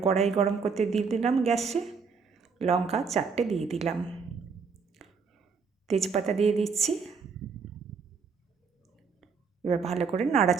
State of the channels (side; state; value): left; quieter; 5.5 dB